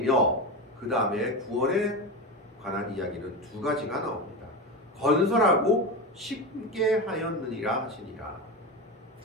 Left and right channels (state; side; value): normal; both; correlation 0.21